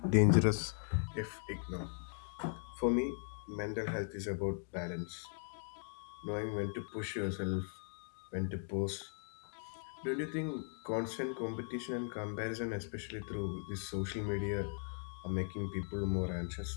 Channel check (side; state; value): right; silent; 52 dB below the other